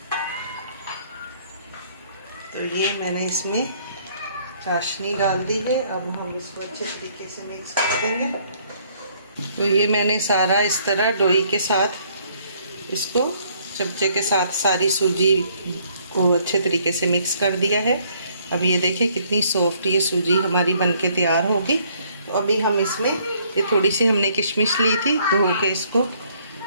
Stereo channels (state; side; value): inverted; both; correlation -0.64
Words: तो ये मैंने इसमें चाशनी डाल दी है। अब हम इसको अच्छे तरीके से मिक्स कर देंगे। तो ये मैंने सारा इस तरह डोई के साथ इसको चमचे के साथ सारी सूजी को अच्छे तरीके से मिक्स कर दिया है। अब ये देखें कितनी सॉफ्ट ये सूजी हमारी बनके तैयार होगी। तो अभी हम इसमें ये थोड़ी सी हमने किशमिश ली थी, धो के इसको